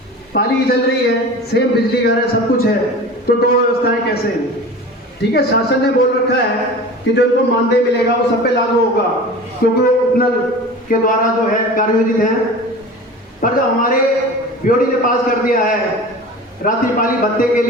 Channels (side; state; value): both; normal; correlation 0.36